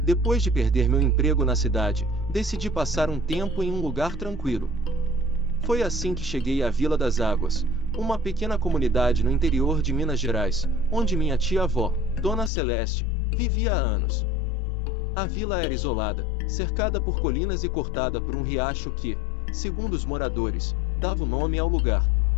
depois de perder meu emprego na cidade, decidi passar um tempo em um lugar tranquilo. Foi assim que cheguei à Vila das Águas, uma pequena comunidade no interior de Minas Gerais, onde minha tia-avó, Dona Celeste, vivia há anos. A vila era isolada, cercada por colinas e cortada por um riacho que, segundo os moradores, dava o nome ao lugar.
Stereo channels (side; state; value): right; drops out; at 12.5 s